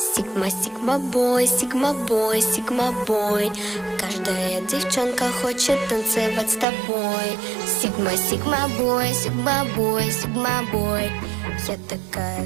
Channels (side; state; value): left; drops out; at 6.7 s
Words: Сигма, сигма бой, сигма бой, сигма бой. Каждая девчонка хочет танцевать с тобой. Сигма, сигма бой, сигма бой, сигма бой. Я такая